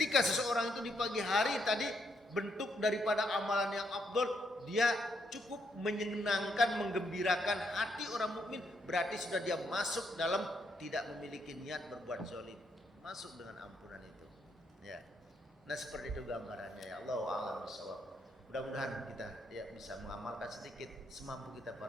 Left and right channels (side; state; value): both; normal; correlation 0.76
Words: seseorang itu di pagi hari tadi bentuk daripada amalan yang afdol, dia cukup menyenangkan, menggembirakan hati orang mukmin, berarti sudah dia masuk dalam tidak memiliki niat berbuat zalim, masuk dengan ampunan itu. Ya. Nah seperti itu gambarannya ya. Allahu a'lam bishawab. Mudah-mudahan kita ya bisa mengamalkan sedikit semampu kita